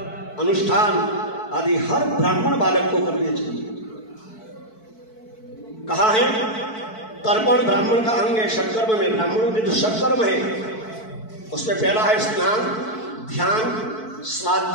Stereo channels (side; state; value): right; late; 4.6 ms